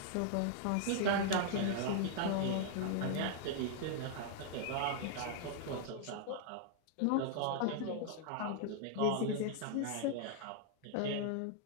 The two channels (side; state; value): both; different; correlation -0.01